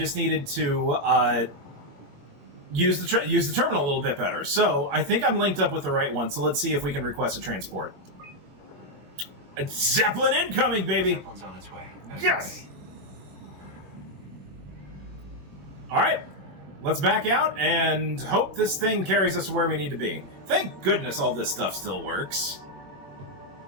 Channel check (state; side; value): late; left; 21 ms